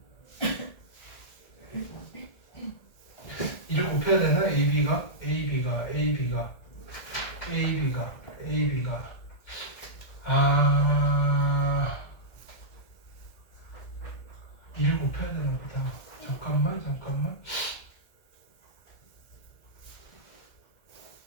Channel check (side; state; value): right; late; 1.7 ms